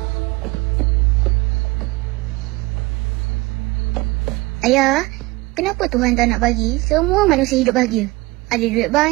Ayah, Kenapa Tuhan tak nak bagi semua manusia hidup bahagia? Ada duit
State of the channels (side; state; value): left; quieter; 22.0 dB